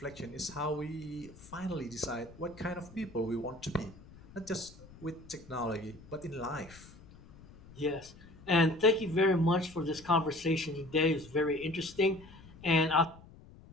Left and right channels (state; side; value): noise; left; rumble, 20 dB below the sound